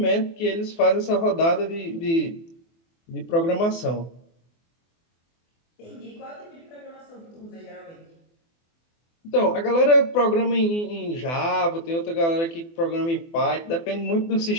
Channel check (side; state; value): right; late; 24 ms